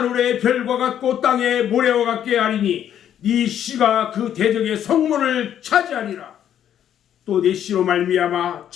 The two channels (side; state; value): right; quieter; 10.1 dB